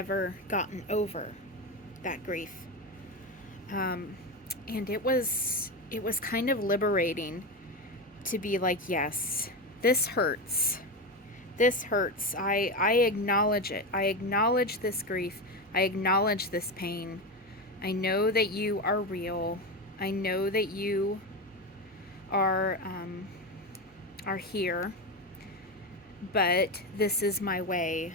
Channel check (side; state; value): both; normal; correlation 0.17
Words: gotten over that grief. And it was kind of liberating to be like, yes, this hurts. This hurts. I acknowledge it. I acknowledge this grief. I acknowledge this pain. I know that you are real. I know that you are here. But this is my way